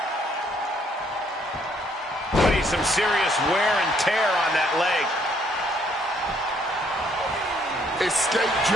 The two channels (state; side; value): normal; both; correlation 0.67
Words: Putting some serious wear and tear on that leg. Escape